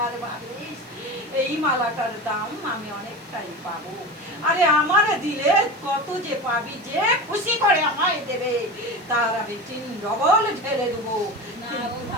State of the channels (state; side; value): noise; left; hiss, 29 dB below the sound